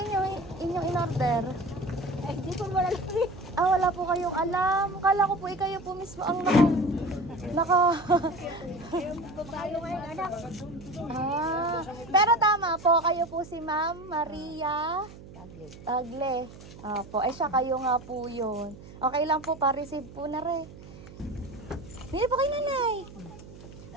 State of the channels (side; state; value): right; noise; hum, 17 dB below the sound